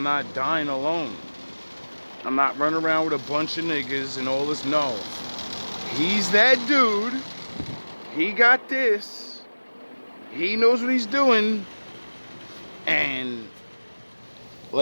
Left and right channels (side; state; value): both; inverted; correlation -1.00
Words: not dying alone. I'm not running around with a bunch of niggas and all this. No. He's that dude. He got this. He knows what he's doing. And